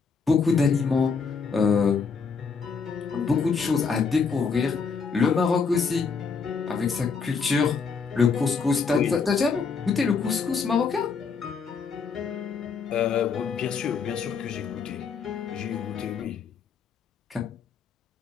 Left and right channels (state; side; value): quieter; right; 5.4 dB